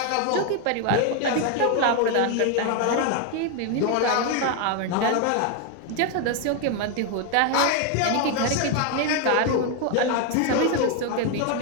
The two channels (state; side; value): different; both; correlation 0.01